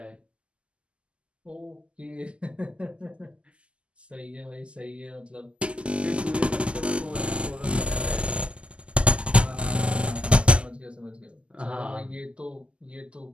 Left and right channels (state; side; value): late; left; 0.054 ms